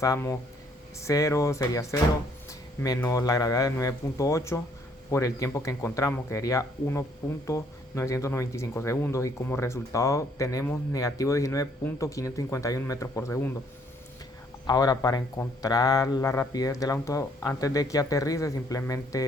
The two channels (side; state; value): both; normal; correlation 0.65